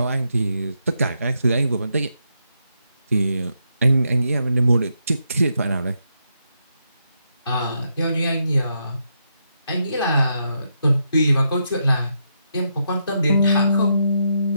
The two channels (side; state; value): both; inverted; correlation -0.81